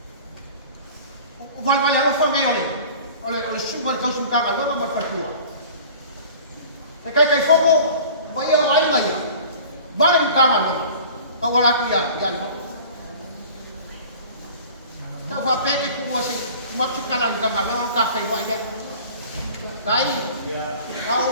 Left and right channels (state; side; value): inverted; both; correlation -0.43